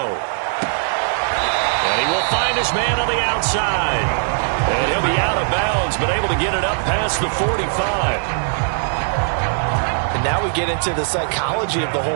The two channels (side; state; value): left; silent; 66 dB below the other